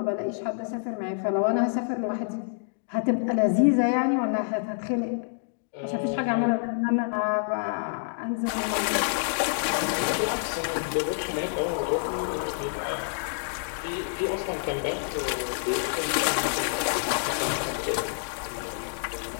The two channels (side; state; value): right; silent; digital silence